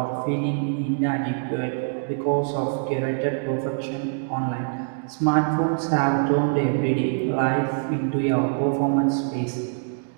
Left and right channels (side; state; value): left; silent; digital silence